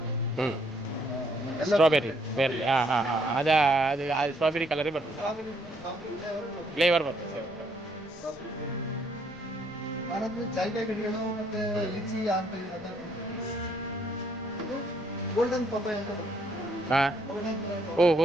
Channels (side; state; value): left; noise; rumble, 24 dB below the sound